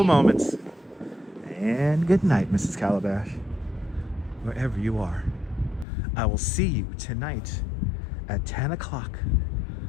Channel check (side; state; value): right; drops out; at 5.9 s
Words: moments. And good night, Mrs. Calabash. Wherever you are. I will see you tonight at 10 o'clock.